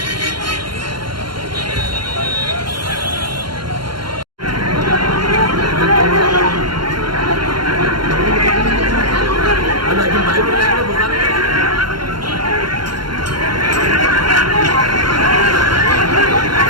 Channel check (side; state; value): left; late; 0.72 ms